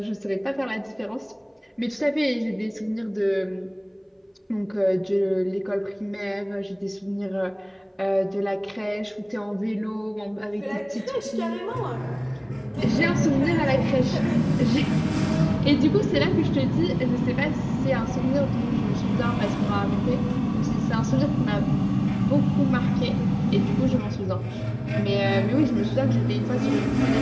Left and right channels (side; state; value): both; identical; correlation 1.00